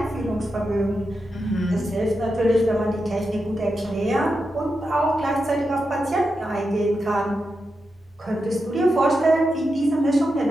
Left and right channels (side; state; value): both; normal; correlation 0.88